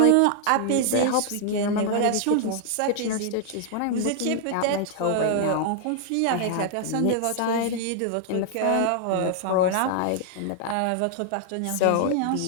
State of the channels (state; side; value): different; both; correlation 0.00